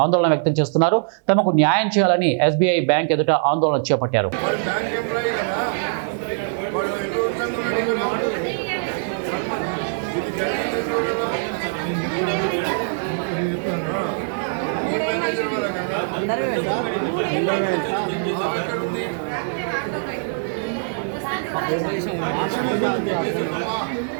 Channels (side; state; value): left; silent; digital silence